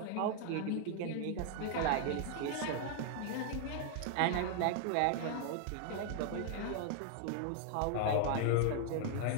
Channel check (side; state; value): both; different; correlation 0.00